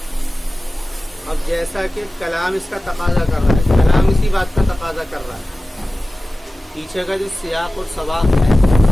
اب جیسا کہ کلام اس کا تقاضا کر رہا ہے، کلام اسی بات کا تقاضا کر رہا ہے، پیچھے کا جو سیاق اور سباق ہے،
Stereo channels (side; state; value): both; normal; correlation 0.96